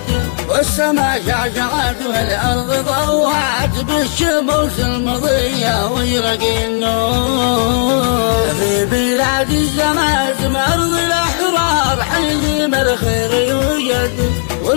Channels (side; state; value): right; silent; digital silence